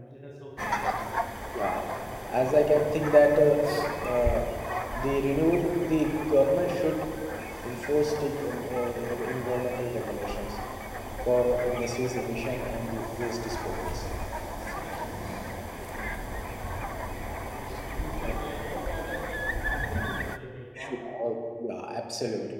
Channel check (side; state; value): both; identical; correlation 1.00